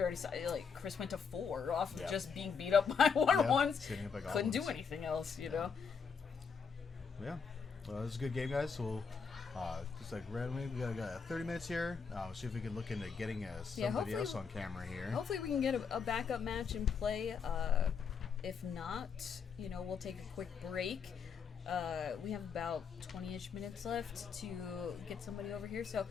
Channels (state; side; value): quieter; right; 6.0 dB